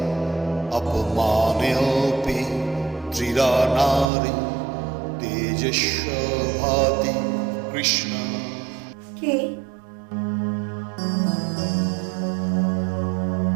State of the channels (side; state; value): left; drops out; at 4.0 s